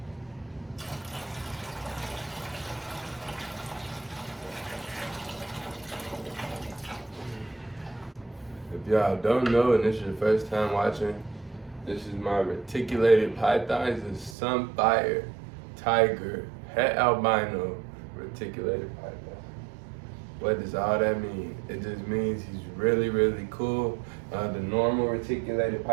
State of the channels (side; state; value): left; drops out; at 14.4 s